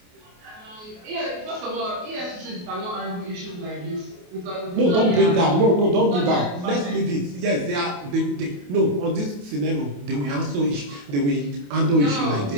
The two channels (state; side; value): late; left; 28 ms